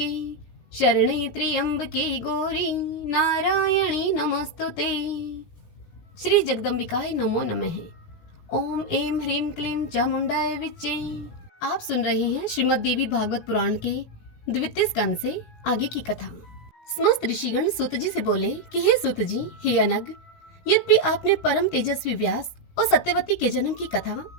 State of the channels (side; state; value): right; late; 18 ms